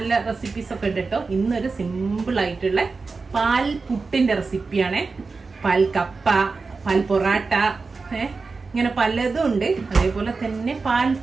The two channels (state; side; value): quieter; left; 4.3 dB